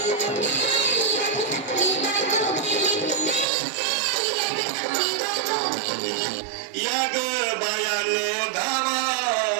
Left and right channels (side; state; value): left; drops out; at 3.5 s